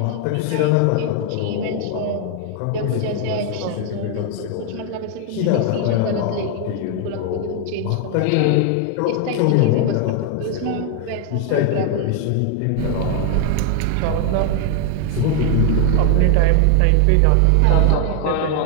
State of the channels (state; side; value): different; both; correlation 0.00